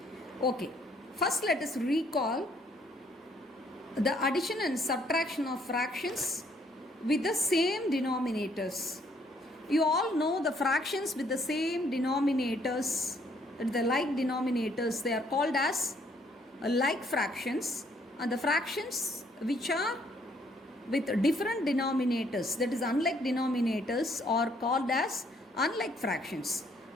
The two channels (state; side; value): normal; both; correlation 0.66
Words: Okay, first let us recall the addition and subtraction of fractions with the same denominators. You all know the fractions with the same denominators, the like denominators, they are called as like fractions. And the fractions which are with different denominators, that is unlike denominators, are called as unlike fractions.